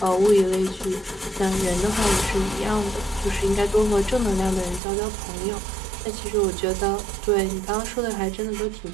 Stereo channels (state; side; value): drops out; left; at 4.8 s